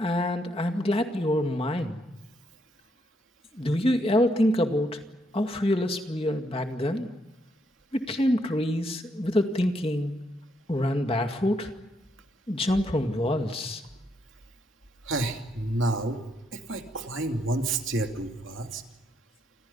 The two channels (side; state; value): both; normal; correlation 0.76